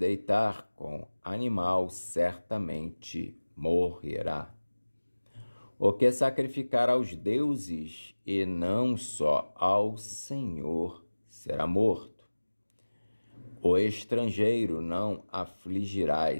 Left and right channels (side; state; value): both; inverted; correlation -1.00